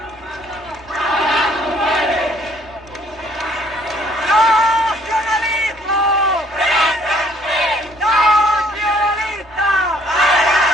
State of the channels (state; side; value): normal; both; correlation 0.62